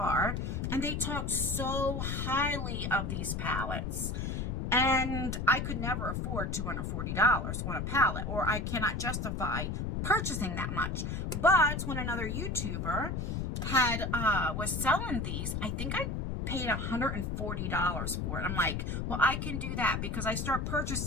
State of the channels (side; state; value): left; noise; rumble, 2 dB below the sound